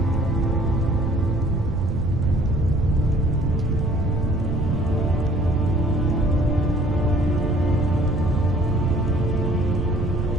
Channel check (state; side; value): noise; right; rumble, 4 dB below the sound